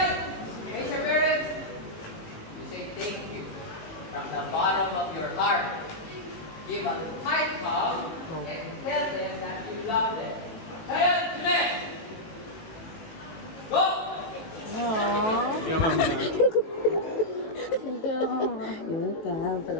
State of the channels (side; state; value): right; late; 18 ms